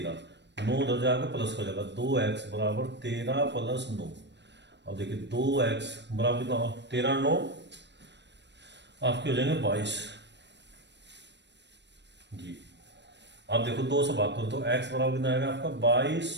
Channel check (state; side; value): late; left; 0.51 ms